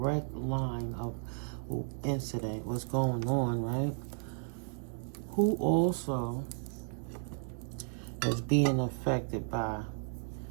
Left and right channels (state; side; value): silent; left; 55 dB below the other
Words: line of incident, what's going on, right? Who also is being affected by